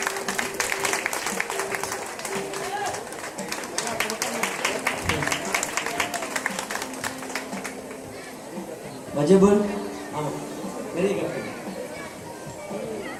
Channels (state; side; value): identical; both; correlation 1.00